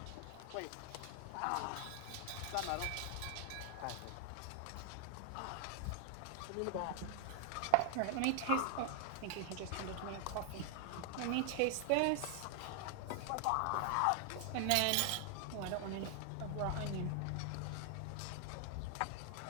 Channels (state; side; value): different; both; correlation 0.00